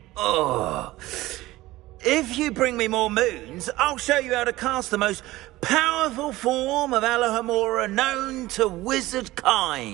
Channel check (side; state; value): left; quieter; 17.8 dB